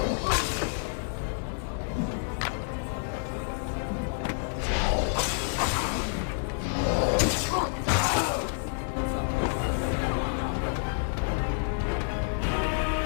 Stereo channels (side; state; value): right; silent; digital silence